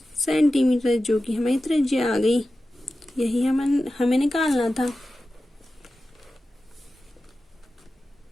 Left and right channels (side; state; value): both; normal; correlation 0.94